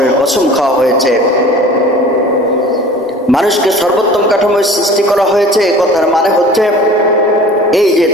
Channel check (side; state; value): both; normal; correlation 0.43